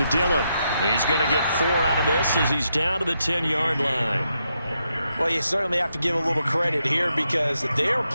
Dillon. He's going to get 4 out of this as he's down to the 10-yard line. Well, you certainly have to give a little credit here because they're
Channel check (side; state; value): both; inverted; correlation -0.82